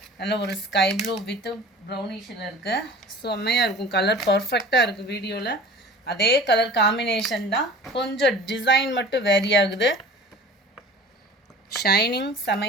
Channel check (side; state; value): both; normal; correlation 0.42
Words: நல்ல ஒரு ஸ்கை ப்ளூ வித் ப்ரௌனிஷில் இருக்குது. செம்மையாக இருக்கும். கலர் பர்ஃபெக்டாக இருக்குது. வீடியோவில் அதே கலர் காம்பினேஷன் தான், கொஞ்சம் டிசைன் மட்டும் வேரி ஆகுது. ஷைனிங்